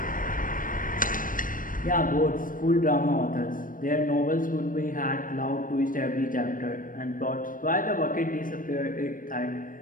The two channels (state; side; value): late; right; 0.40 ms